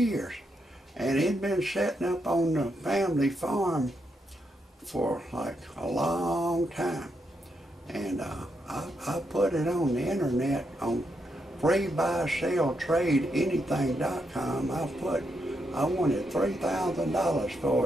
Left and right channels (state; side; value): normal; both; correlation 0.81